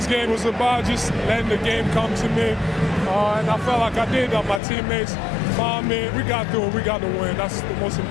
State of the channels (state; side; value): drops out; right; at 4.6 s